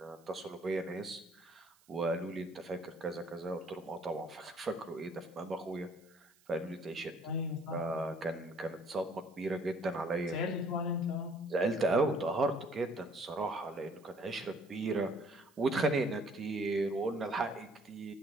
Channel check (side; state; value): right; noise; hiss, 30 dB below the sound